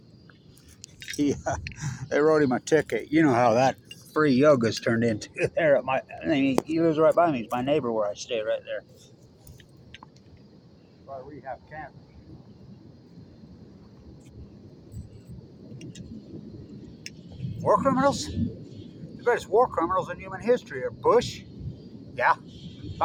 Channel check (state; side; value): identical; both; correlation 1.00